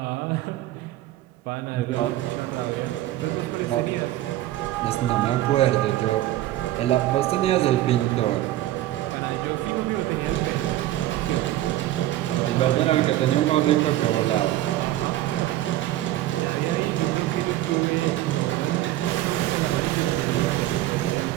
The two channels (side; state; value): left; quieter; 14.7 dB